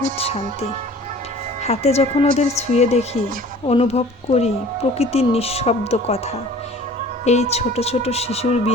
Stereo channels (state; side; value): normal; both; correlation 0.47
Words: শান্তি। হাতে যখন ওদের ছুঁয়ে দেখি, অনুভব করি প্রকৃতির নিঃশব্দ কথা। এই ছোট ছোট শিশুর